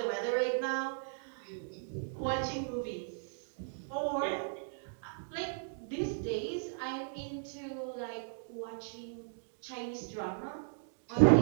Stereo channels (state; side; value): silent; left; digital silence